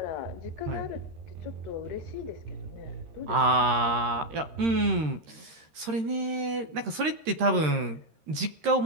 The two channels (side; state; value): left; late; 13 ms